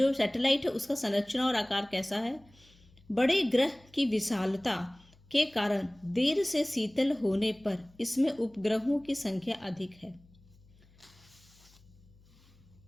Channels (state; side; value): noise; left; hum, 28 dB below the sound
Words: सैटेलाइट है उसका संरचना और आकार कैसा है। बड़े ग्रह की विशालता के कारण देर से शीतल होने पर इसमें उपग्रहों की संख्या अधिक है